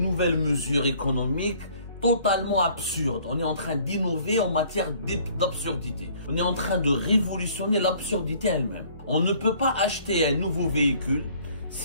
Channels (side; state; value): both; inverted; correlation -0.57